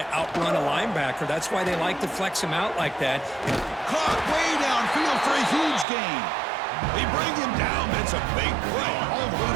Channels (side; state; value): left; drops out; at 5.9 s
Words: outrun a linebacker. That's why they like to flex him out like that. Caught way downfield for a huge gain. They bring him down, but it's a big play all the way